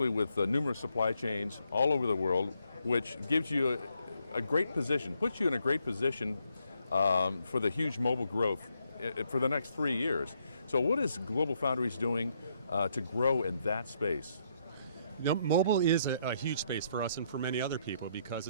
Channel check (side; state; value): both; inverted; correlation -0.74